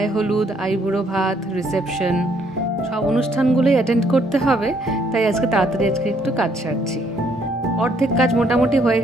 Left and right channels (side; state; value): both; normal; correlation 0.68